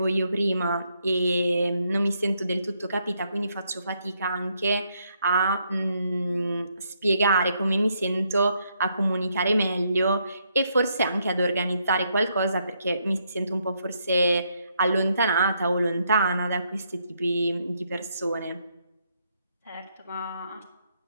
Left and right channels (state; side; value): inverted; both; correlation -0.75